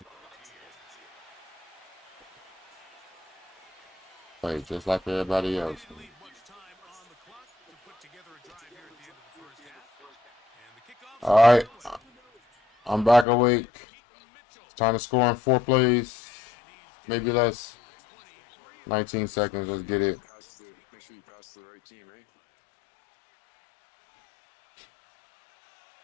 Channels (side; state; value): right; drops out; at 13.2 s